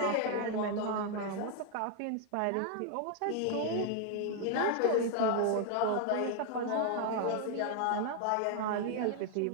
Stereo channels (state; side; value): different; both; correlation 0.00